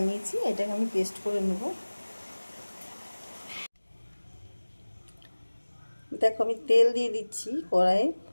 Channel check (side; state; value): both; inverted; correlation -1.00